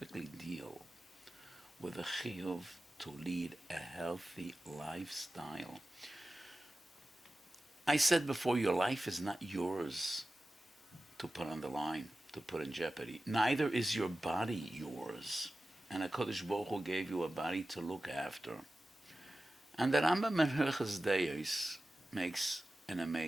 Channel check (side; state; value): both; normal; correlation 0.95